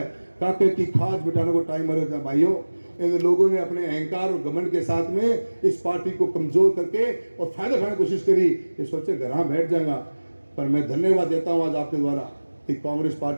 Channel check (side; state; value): both; inverted; correlation -1.00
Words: काके की खाज बिठाने को टाइम मरे था भाइयों। इन लोगों ने अपने अहंकार और घमंड के साथ में इस पार्टी को कमजोर करके और फायदा उठाने की कोशिश करी, ये सोचे घर बैठ जाएगा। पर मैं धन्यवाद देता हूं आज आपके द्वारा कि कांग्रेस